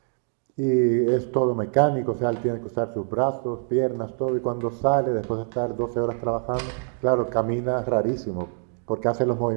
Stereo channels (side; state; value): left; silent; digital silence